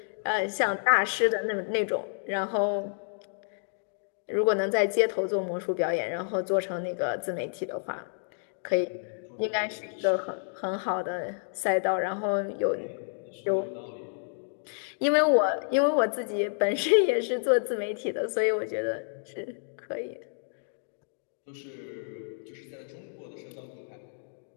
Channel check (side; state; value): right; silent; digital silence